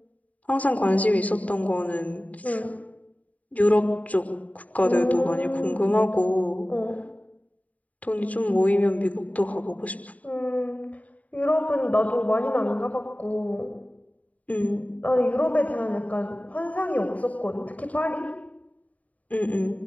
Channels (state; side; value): late; right; 0.070 ms